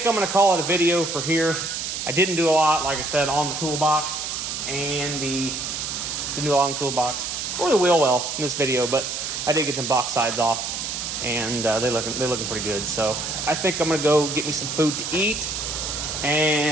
I'm going to call it a video for here. I didn't do a lot, like I said, on the toolbox and didn't do a lot on the toolbox or the wheel well in this video, but I did get some box sides off, and they're looking pretty good. So I think I'm gonna go get me some food to eat,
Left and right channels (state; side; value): noise; right; hiss, 4 dB below the sound